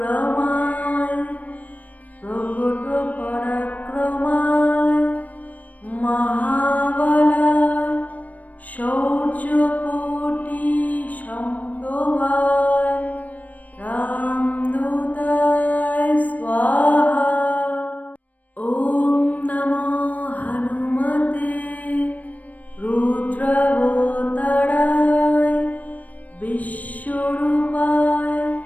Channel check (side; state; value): right; late; 0.073 ms